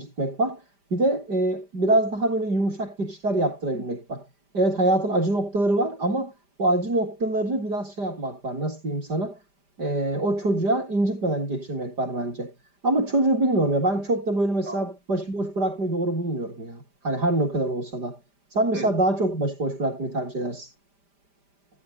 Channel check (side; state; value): left; late; 5.0 ms